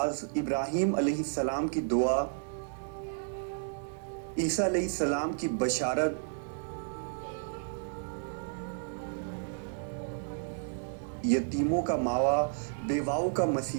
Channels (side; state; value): left; silent; digital silence